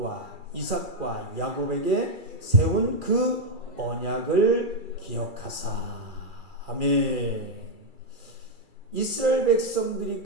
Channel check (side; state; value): left; late; 2.4 ms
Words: 이삭과 야곱에게 세운 그 언약을 기억하사. 아멘. 이스라엘 백성들이